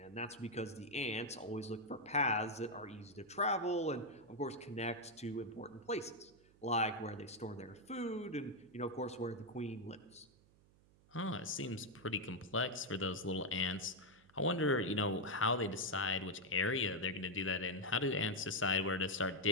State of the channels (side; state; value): right; noise; hum, 28 dB below the sound